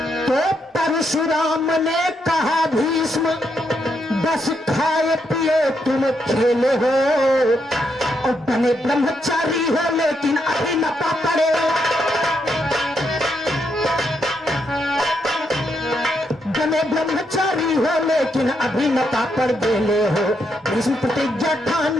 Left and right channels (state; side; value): normal; both; correlation 0.79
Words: तो परशुराम ने कहा भीष्म बस खाए पिए तुम खेले हो, और बने ब्रह्मचारी हो लेकिन अभी न पड़े। बने ब्रह्मचारी हो लेकिन अभी न पड़ बेले हो, भीष्म प्रतिज्ञा